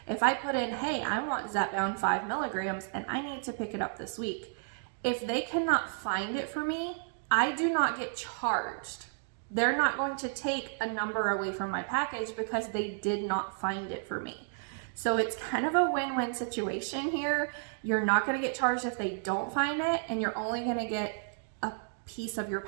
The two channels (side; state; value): left; silent; digital silence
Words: if I put in, hey, I want Zepbound 5 milligrams and I need to pick it up this week, if they cannot find it for me, I do not get charged. They're not going to take a number away from my package because they did not find it for me. So it's kind of a win-win situation here. You're not going to get charged if they don't find it, and you're only going to get a piece of your